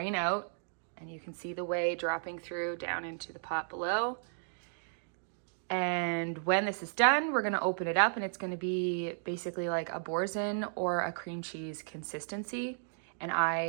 out, and you can see the whey dropping through down into the pot below. And when this is done, we're gonna open it up, and it's gonna be basically like a Boursin or a cream cheese consistency, and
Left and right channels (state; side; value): silent; left; digital silence